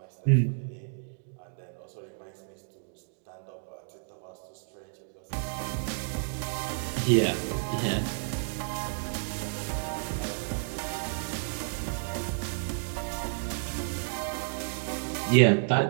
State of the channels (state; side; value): silent; left; digital silence